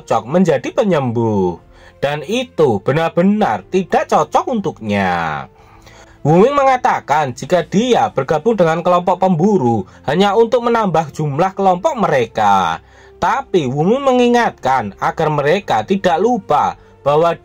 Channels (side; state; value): both; identical; correlation 1.00